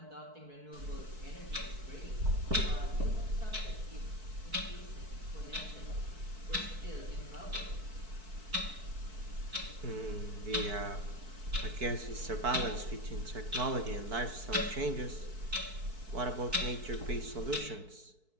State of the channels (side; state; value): left; late; 4.6 ms